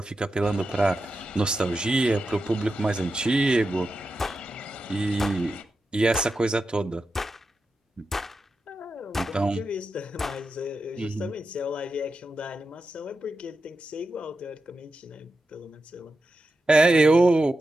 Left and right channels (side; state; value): both; normal; correlation 0.89